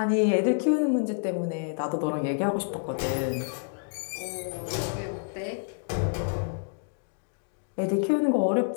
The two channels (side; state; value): right; silent; digital silence